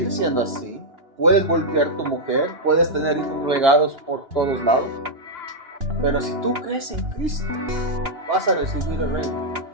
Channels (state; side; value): late; left; 2.9 ms